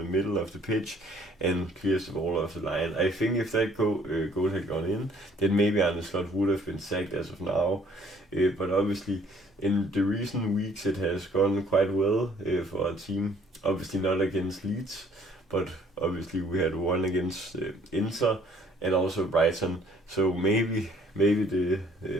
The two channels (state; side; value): normal; both; correlation 0.60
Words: middle of the pitch and clears the ball off the line. I think if that goal had gone in, then maybe Arne would have been sacked as of now. But obviously, in the recent weeks, it has gone quite well for our team. Obviously not against Leeds, but obviously we had one against Inter and also Brighton. So maybe the